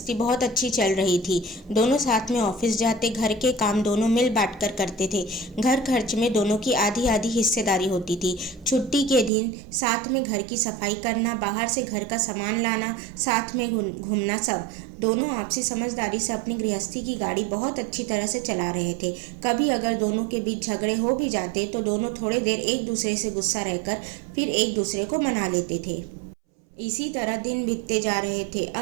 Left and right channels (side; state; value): left; drops out; at 9.3 s